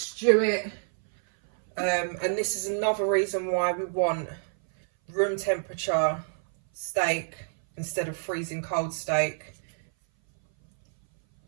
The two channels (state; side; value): silent; left; 58 dB below the other